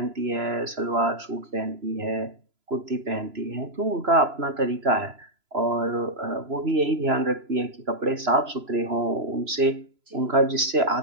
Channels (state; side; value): late; left; 3.0 ms